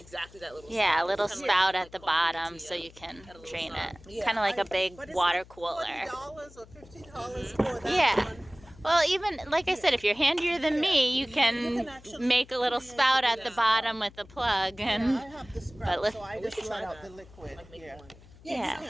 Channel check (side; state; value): left; noise; hum, 22 dB below the sound